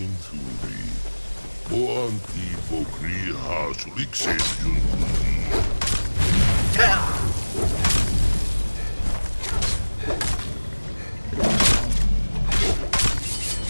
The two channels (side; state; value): both; inverted; correlation -1.00